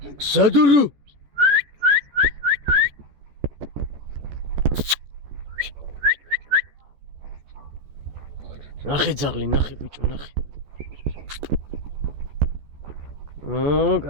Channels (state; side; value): late; left; 14 ms